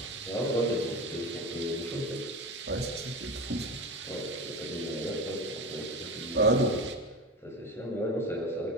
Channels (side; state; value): both; normal; correlation 0.26